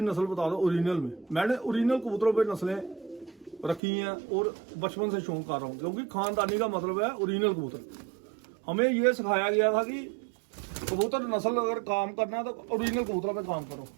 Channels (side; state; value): left; drops out; at 3.8 s